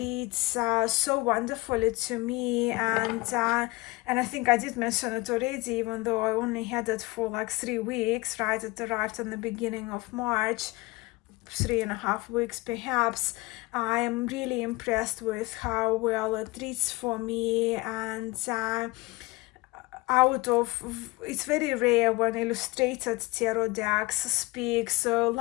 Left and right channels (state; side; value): quieter; right; 22.7 dB